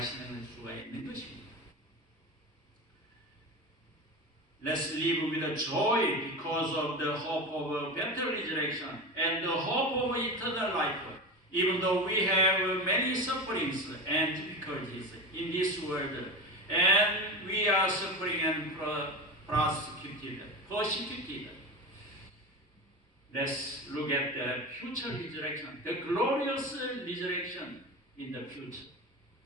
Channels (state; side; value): normal; both; correlation 0.25